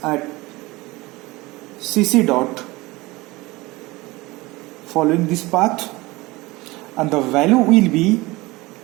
at CC dot following this path, and the value will be,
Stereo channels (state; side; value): quieter; left; 21.5 dB